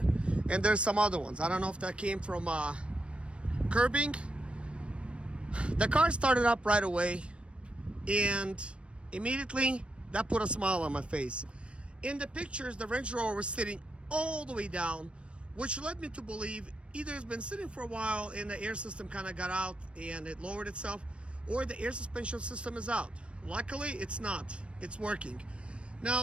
and there's some other ones. I don't know if that came from curbing. The car started up right away, and immediately that put a smile on my face. In the pictures, the Range Rover was sitting all the way down, which led me to believe either it's been sitting for a while and the air system kind of got out and it lowered itself, or the air suspension system is out. Luckily, it's not. It's working.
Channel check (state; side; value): late; left; 0.059 ms